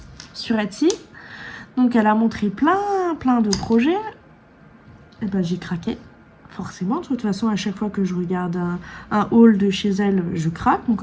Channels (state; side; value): identical; both; correlation 1.00